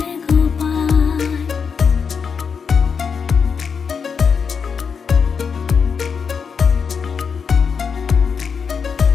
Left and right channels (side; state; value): right; quieter; 6.1 dB